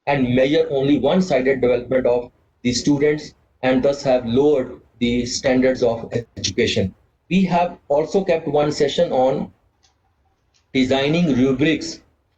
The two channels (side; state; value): both; identical; correlation 1.00